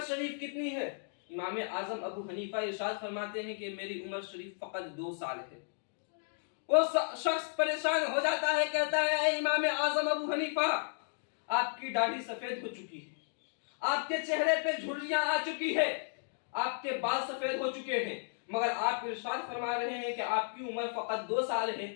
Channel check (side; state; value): right; silent; digital silence